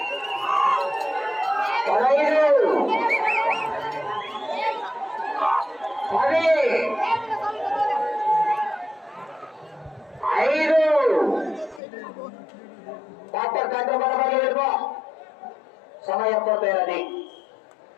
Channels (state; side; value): drops out; right; at 11.8 s